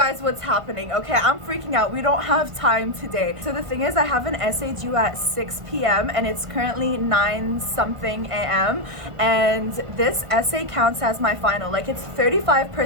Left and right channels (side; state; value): left; late; 1.5 ms